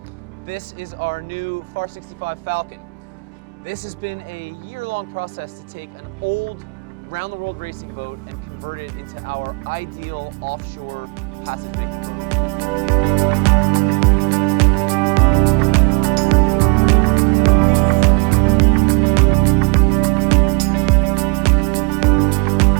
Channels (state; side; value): quieter; left; 34.4 dB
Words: This is our new FAR 65 Falken. This has been a year-long process to take an old round-the-world racing boat and convert it into our ideal offshore passage-making boat.